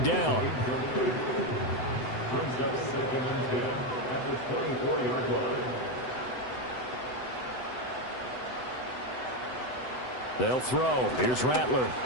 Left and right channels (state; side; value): late; right; 7.9 ms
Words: down. Brings up 2nd and 10 at the 24-yard line. They'll throw. Here's Rattler.